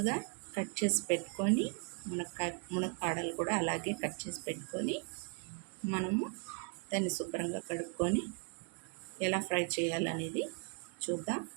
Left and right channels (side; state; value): left; quieter; 38.0 dB